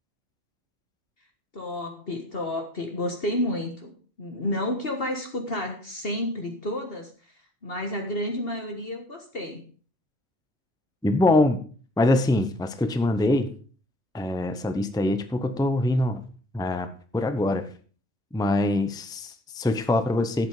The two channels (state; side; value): normal; both; correlation 0.59